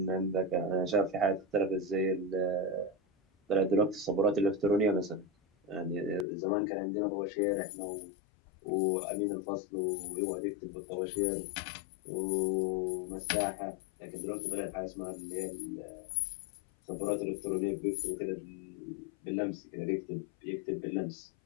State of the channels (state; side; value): drops out; right; at 6.2 s